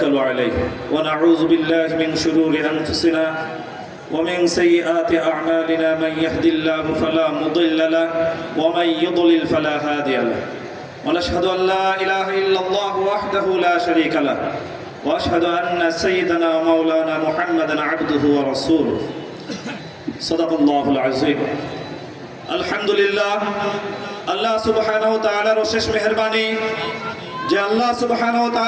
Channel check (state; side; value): identical; both; correlation 1.00